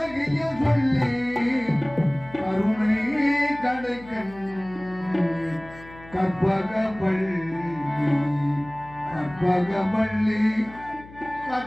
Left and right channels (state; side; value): noise; left; hum, 19 dB below the sound